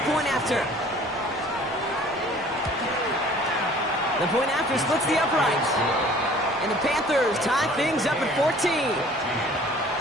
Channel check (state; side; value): normal; both; correlation 0.51